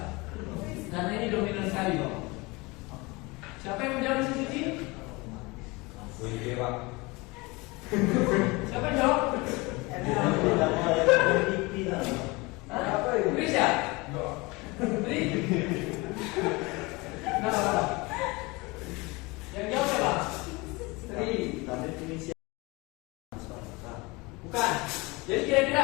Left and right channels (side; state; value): right; quieter; 24.7 dB